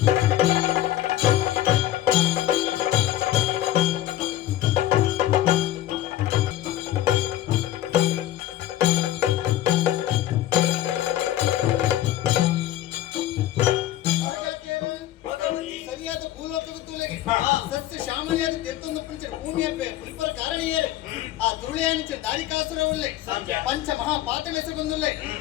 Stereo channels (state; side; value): quieter; right; 13.5 dB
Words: ಸರಿಯಾದ ಭೂಲೋಕದ ತೂಲೆಗೆ ಸಸ್ಯ ಶ್ಯಾಮಲಿಯಾದ ತೆತ್ತೊಂದು ಪಂಚ ಭೂಮಿಯಪ್ಪೆ ಪುಲಿಪರ ಕಾರಣಿಯೇರೆ ಆ ದುರುಳೆಯಾನಿಂಚಿನ ದಾರಿಕಾಸುರವಲ್ಲೇ ಪಂಚ ಮಹಾಪಾತವೆಸಗೊಂದುಲ್ಲೇ